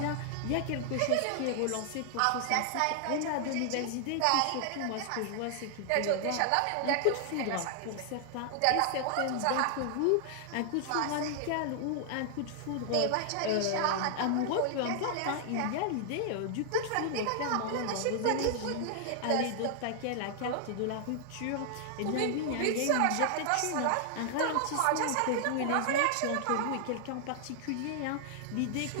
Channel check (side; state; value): both; different; correlation 0.00